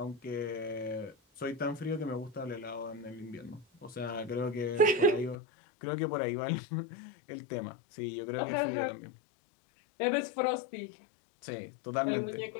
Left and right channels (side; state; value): right; drops out; at 5.4 s